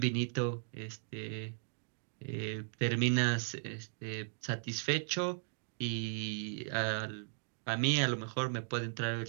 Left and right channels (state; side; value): silent; left; digital silence